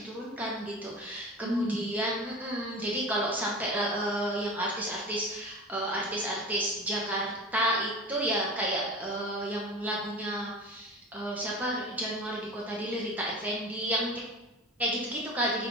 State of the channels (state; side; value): normal; both; correlation 0.34